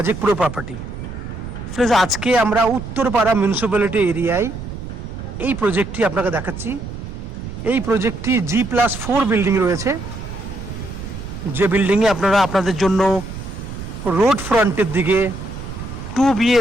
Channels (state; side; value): noise; right; rumble, 9 dB below the sound